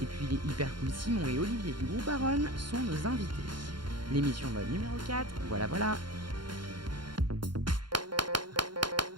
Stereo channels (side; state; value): left; late; 0.72 ms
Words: Et puis les hyper cool Simon et Olivier du groupe Aron sont nos invités. L'émission mode numéro 4, voilà.